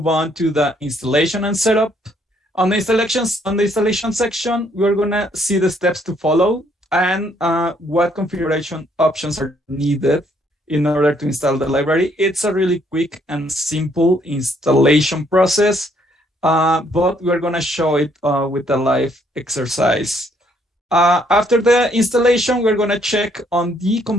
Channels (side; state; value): both; normal; correlation 0.68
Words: on to the installation and setup. On the installation section, we're going to see the steps to follow and what configuration options are needed in order to install the library. It's a really quick and simple installation process, but we're going to show it with a live exercise. After the installation, we're going to check on the